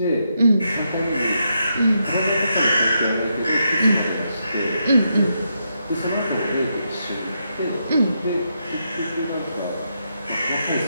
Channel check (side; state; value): both; inverted; correlation -0.82